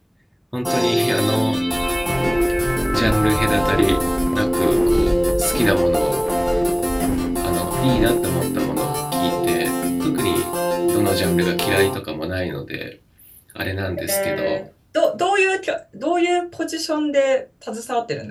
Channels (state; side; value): identical; both; correlation 1.00